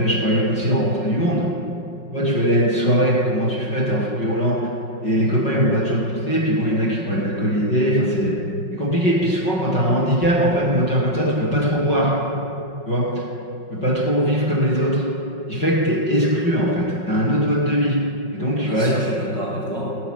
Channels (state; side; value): late; right; 5.5 ms